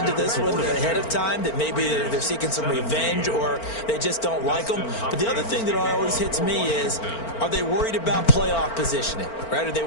this one ahead of time, that maybe they're seeking some revenge or they just don't like them? But the other thing that always hits me is, are they worried about playoff positioning, right? Are they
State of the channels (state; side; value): late; right; 4.4 ms